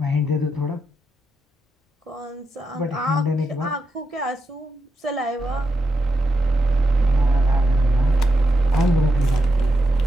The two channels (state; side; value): normal; both; correlation 0.84